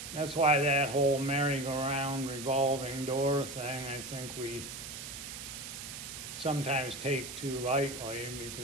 that's why that whole merry-go-round revolving door thing, I think we sometimes take too lightly,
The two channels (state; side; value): noise; right; hiss, 9 dB below the sound